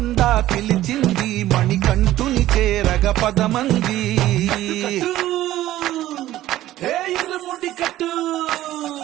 పిలిచింది మణికంఠుని చేరగ పదమంది ఇరుముడి కట్టు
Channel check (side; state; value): left; quieter; 14.5 dB